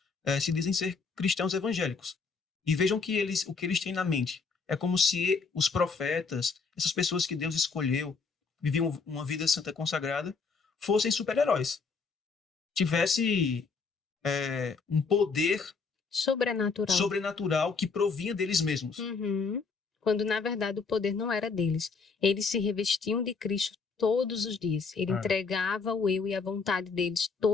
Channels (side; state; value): right; quieter; 4.8 dB